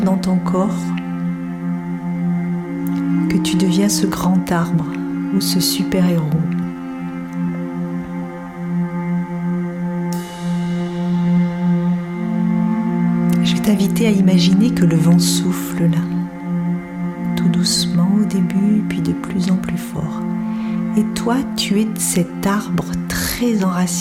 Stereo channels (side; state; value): both; identical; correlation 1.00